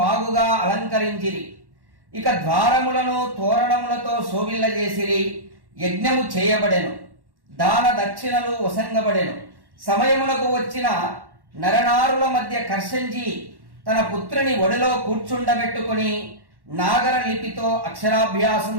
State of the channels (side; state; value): left; late; 1.1 ms